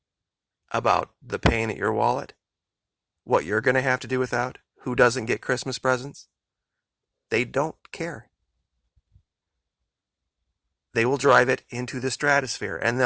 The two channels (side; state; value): both; identical; correlation 1.00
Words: about the pain at your wallet, what you're going to have to do without, who doesn't get Christmas presents. They don't care. They will drive it into the stratosphere, and